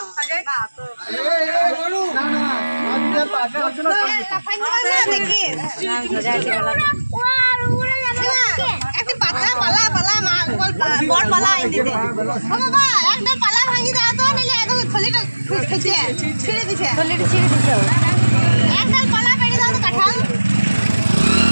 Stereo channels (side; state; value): both; inverted; correlation -1.00